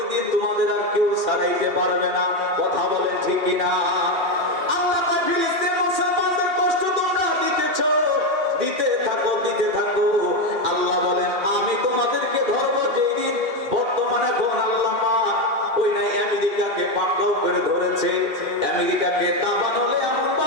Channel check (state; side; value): late; left; 2.7 ms